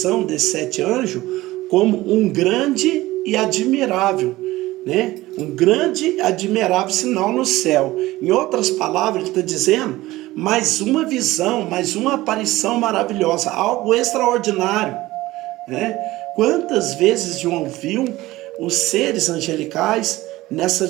desses 7 anjos como um grande e admirável, né? Um grande e admirável sinal no céu. Em outras palavras, ele está dizendo mais uma visão, mais uma aparição maravilhosa, algo extraordinário, né? Quantas vezes João viu os seres angelicais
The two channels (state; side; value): quieter; left; 17.8 dB